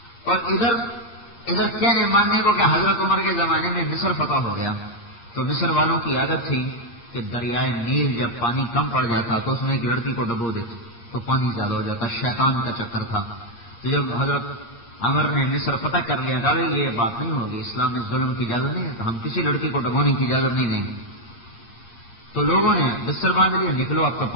اور ادھر کہنے ماننے کو کہ حضرت عمر کے زمانے میں مصر فتح ہو گیا تو مصر والوں کی عادت تھی کہ دریائے نیل جب پانی کم پڑ جاتا تو اس میں ایک لڑکی کو ڈبو دیتے تو پانی زیادہ ہو جاتا. شیطان کا چکر تھا. تو جب حضرت عمر نے مصر فتح کر لیا کہا یہ بات نہیں ہوگی، اسلام میں ظلم کی اجازت نہیں ہے، تو ہم کسی لڑکی کو ڈبونے کی اجازت نہیں دیں گے. تو لوگوں نے بستر باندھ لیا، نکلو اب تو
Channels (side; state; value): right; late; 8.6 ms